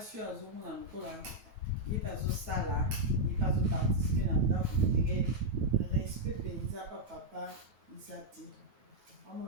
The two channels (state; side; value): late; left; 9.2 ms